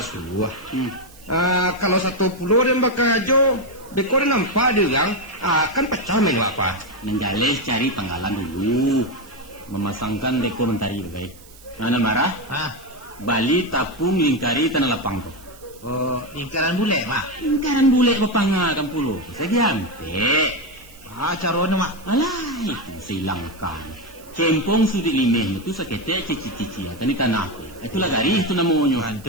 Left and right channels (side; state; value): right; noise; hiss, 23 dB below the sound